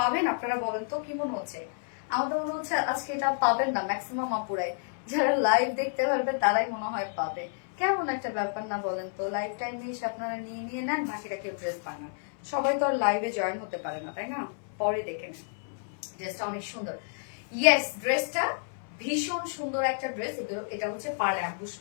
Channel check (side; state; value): right; silent; 58 dB below the other